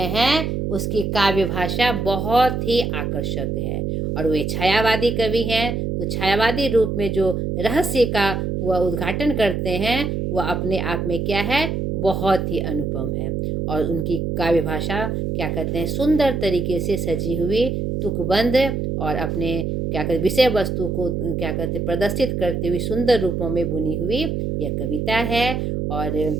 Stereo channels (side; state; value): right; noise; hum, 1 dB below the sound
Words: हैं उसकी काव्य भाषा बहुत ही आकर्षक है और वे छायावादी कवि हैं। तो छायावादी रूप में जो रहस्य का वह उद्घाटन करते हैं वह अपने आप में क्या है, बहुत ही अनुपम है। और उनकी काव्य भाषा क्या कहते हैं, सुंदर तरीके से सजी हुई, तुकबंद और अपने क्या कहते विषय वस्तु को क्या कहते प्रदर्शित करते हुए सुंदर रूपों में बुनी हुई यह कविता है। और